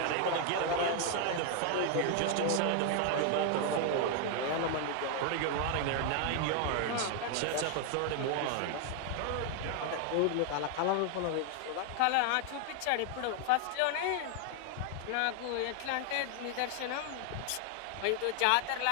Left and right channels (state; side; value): different; both; correlation 0.00